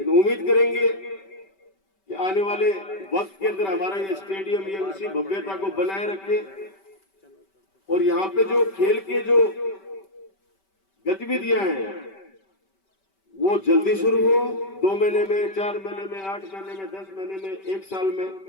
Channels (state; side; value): late; right; 5.2 ms